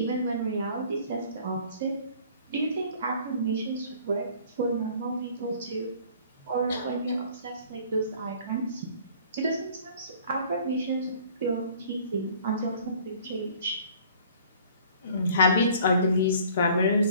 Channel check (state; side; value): inverted; both; correlation -0.52